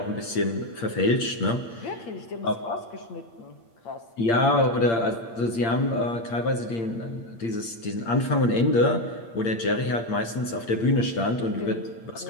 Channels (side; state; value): right; late; 8.7 ms